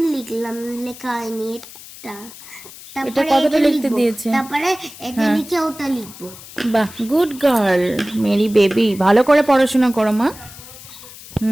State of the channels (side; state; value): left; noise; hiss, 17 dB below the sound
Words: লিখলাম, লেখা হয়নি এটা। এটা কতটা লিখতে দিয়েছে? তারপরে এটা লিখে ওটা লিখবো। বাহ, গুড গার্ল, মেরি বেবি। ভালো করে পড়াশোনা করো মা।